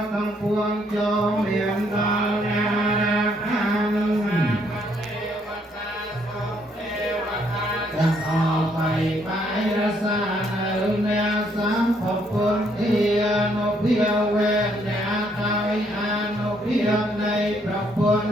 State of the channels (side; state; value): both; normal; correlation 0.70